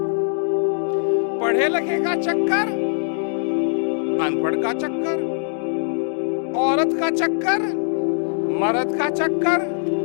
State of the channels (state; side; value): silent; right; digital silence